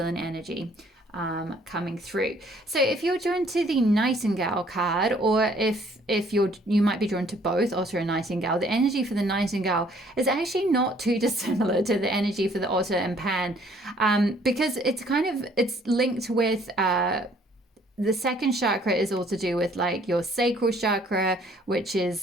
energy coming through. So if you're drawn to the Nightingale card, or if you might be drawn to both Otter and Nightingale, the energy for the Nightingale is actually not too dissimilar to the energy for the Otter and Pan, because it's linked with the second chakra is all to do with like your sacral chakra, which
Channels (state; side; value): normal; both; correlation 0.61